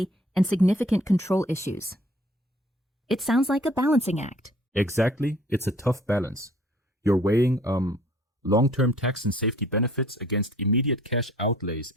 and significant control issues. It sounds like a balancing act. Exactly, it's a tough balance. You're weighing long-term tax and safety benefits against immediate cash outlays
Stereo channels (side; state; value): both; normal; correlation 0.55